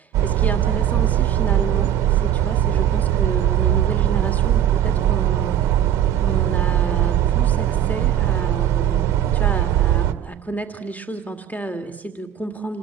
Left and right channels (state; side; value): quieter; left; 10.1 dB